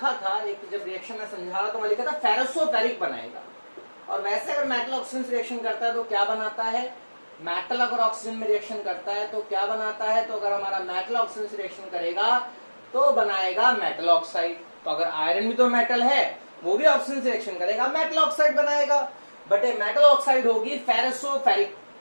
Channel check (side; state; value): both; inverted; correlation -1.00